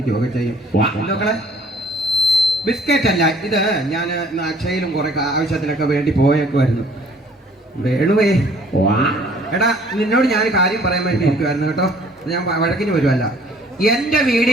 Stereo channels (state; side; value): normal; both; correlation 0.56